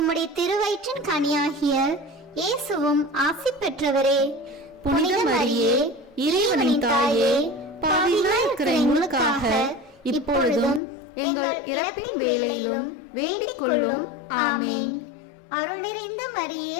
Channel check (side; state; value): right; drops out; at 10.8 s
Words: திருவயிற்றின் கனியாகிய இயேசுவும் ஆசி பெற்றவரே. புனித மரியே, இறைவனின் தாயே, பாவிகளாய் இருக்கிற எங்களுக்காக இப்பொழுதும் எங்கள் இறப்பின் வேளையிலும் வேண்டிக் கொள்ளும். ஆமேன். அருள் நிறைந்த மரியே